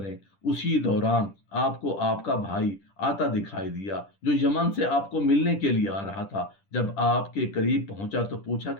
اسی دوران آپ کو آپ کا بھائی آتا دکھائی دیا جو یمن سے آپ کو ملنے کے لیے آ رہا تھا۔ جب آپ کے قریب پہنچا تو پوچھا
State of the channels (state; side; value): late; right; 10 ms